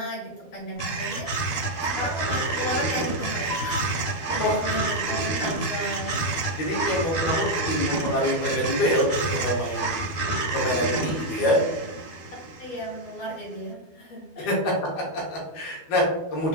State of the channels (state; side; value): late; right; 12 ms